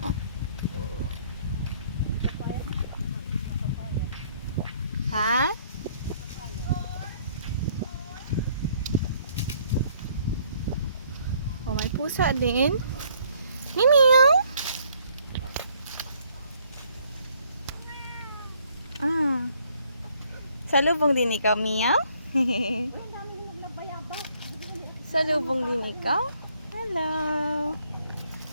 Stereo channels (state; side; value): inverted; both; correlation -0.64